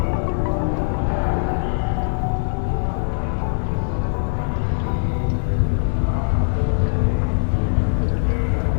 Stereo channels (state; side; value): silent; right; 57 dB below the other